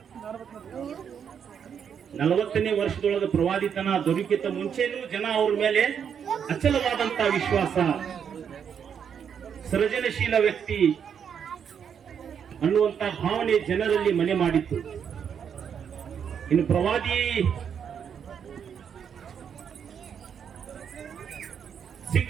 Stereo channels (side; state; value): left; quieter; 7.7 dB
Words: 40ನೇ ವರ್ಷದೊಳಗ ಪ್ರವಾದಿತನ ದೊರೆಯುಕ್ಕಿಂತ ಮುಂಚೆನೂ ಜನ ಅವ್ರ ಮೇಲೆ ಅಚಲವಾದಂತ ವಿಶ್ವಾಸ, ಸೃಜನಶೀಲ ವ್ಯಕ್ತಿ ಅನ್ನುವಂತ ಭಾವನೆ ಜನರಲ್ಲಿ ಮನೆ ಮಾಡಿತ್ತು. ಇನ್ನು ಪ್ರವಾದಿ